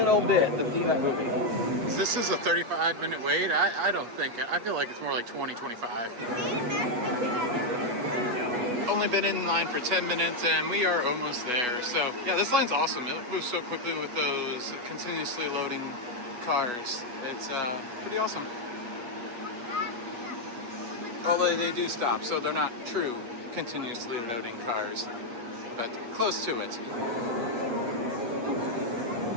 bit, the theme of that movie. This is a 35-minute wait? I don't think, I feel like it's more like 20, 25. Only been in line for 10 minutes and we are almost there. So yeah, this line's awesome. It moves so quickly with those continuously loading cars. It's pretty awesome. Although they do stop, so they're not true continuously loading cars, but close to it.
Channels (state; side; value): late; left; 8.1 ms